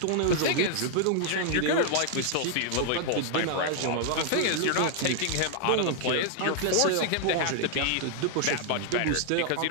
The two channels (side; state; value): both; different; correlation 0.00